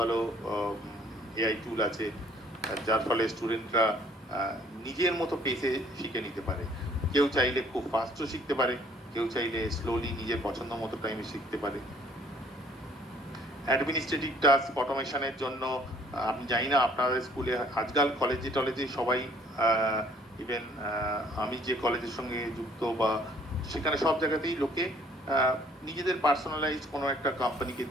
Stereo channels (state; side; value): normal; both; correlation 0.59